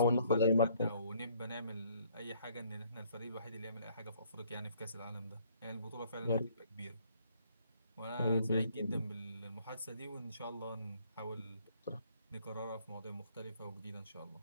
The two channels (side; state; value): both; inverted; correlation -0.63